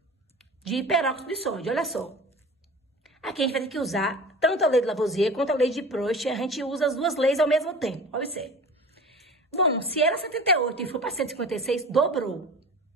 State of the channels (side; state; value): both; normal; correlation 0.38